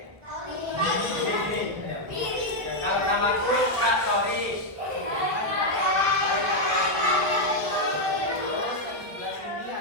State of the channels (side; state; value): left; late; 1.4 ms